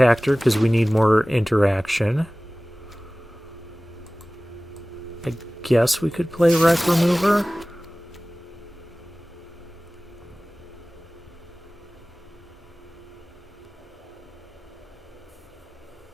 because we need more interaction. I guess we could play wreck remover.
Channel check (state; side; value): normal; both; correlation 0.98